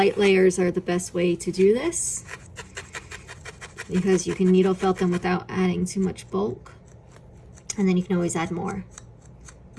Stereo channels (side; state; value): both; identical; correlation 1.00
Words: layers are the best way to do this because you can needle felt them without adding too much bulk, and then you can always add more.